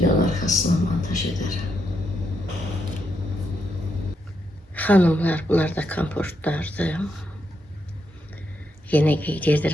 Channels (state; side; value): normal; both; correlation 0.80